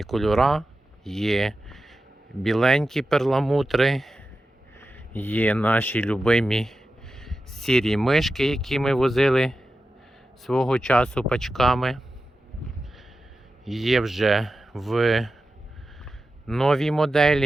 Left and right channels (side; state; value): both; normal; correlation 0.92